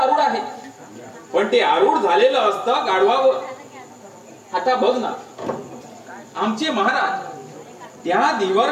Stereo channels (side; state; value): both; identical; correlation 1.00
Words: आहे, पण ते आरूढ झालेलं असतं गाढवावर. आता बघ ना, आमचे महाराज त्या धीवर